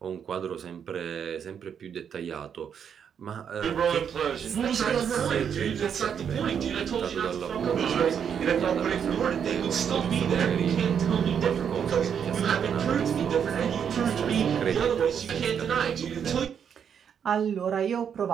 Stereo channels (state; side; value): quieter; left; 7.8 dB